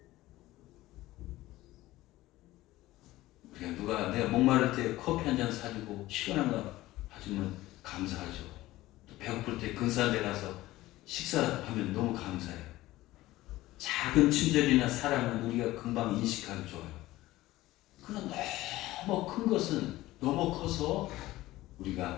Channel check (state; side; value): quieter; right; 17.1 dB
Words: 그러니까 누가 내가 목마를 때 커피 한 잔 사주고 시원한 거 사주면 감사하죠. 또 배고플 때 근사한 데 가서 식사하면 너무 감사해요. 작은 친절이나 사랑은 우리가 금방 인식하기 좋아요. 그러나 너무 큰 것은 너무 커서